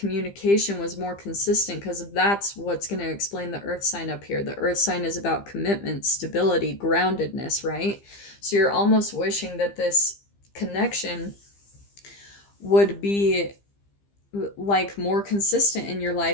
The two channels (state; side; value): late; right; 15 ms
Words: was more consistent, because that's what's going to explain the earth sign up here. The earth sign is about commitment, stability, groundedness, right? So you're almost wishing that this connection would be like more consistent in your